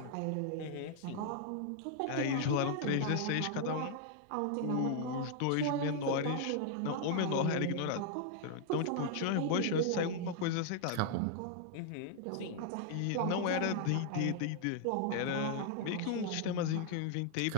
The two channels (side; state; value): both; different; correlation 0.00